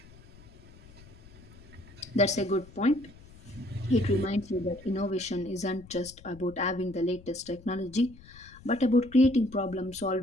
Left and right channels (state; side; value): noise; left; rumble, 21 dB below the sound